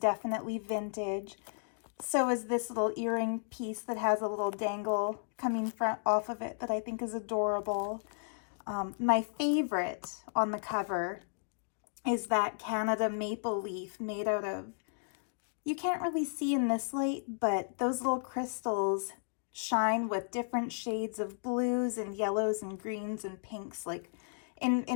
vintage. So is this little earring piece that has a little dangle coming off of it that I think is adorable. My favorite on the cover is that Canada maple leaf made out of, you can't really see in this light, but those little crystals shine with different shades of blues and yellows and greens and pinks. Like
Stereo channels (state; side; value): silent; right; digital silence